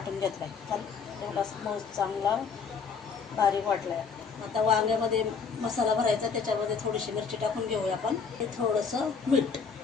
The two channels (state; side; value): quieter; right; 5.7 dB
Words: घेतला आहे. तेवढा चांगला बारीक वाटला आहे. आता वांग्यामध्ये मसाला भरायचा. त्याच्यामध्ये थोडीशी मिरची टाकून घेऊया आपण. हे थोडंसं मीठ